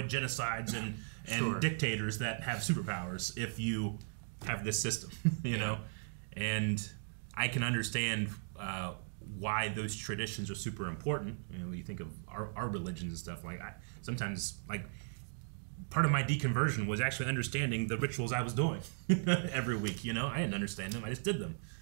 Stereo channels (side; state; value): left; silent; digital silence